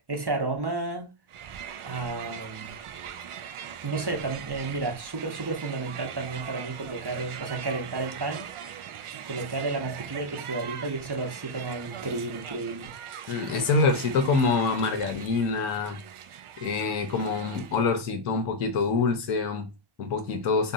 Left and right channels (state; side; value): late; left; 1.1 ms